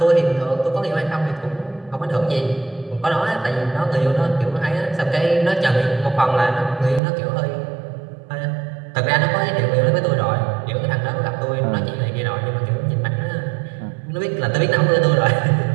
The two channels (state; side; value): drops out; left; at 7.0 s